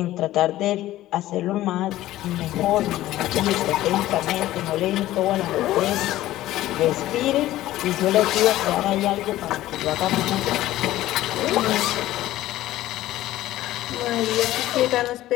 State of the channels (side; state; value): right; quieter; 15.1 dB